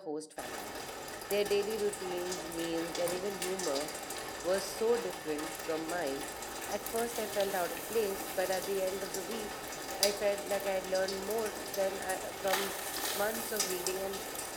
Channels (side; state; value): both; identical; correlation 1.00